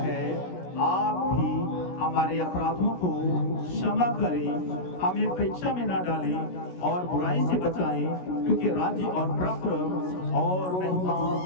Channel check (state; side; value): late; right; 16 ms